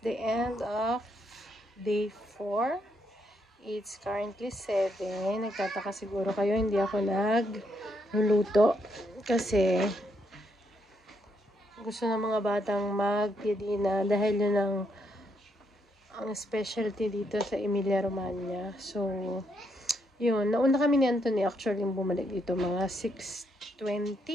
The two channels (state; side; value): normal; both; correlation 0.77